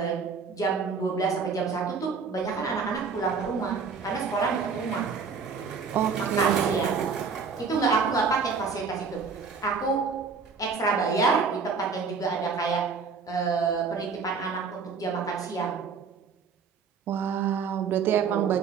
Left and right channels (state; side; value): quieter; left; 5.4 dB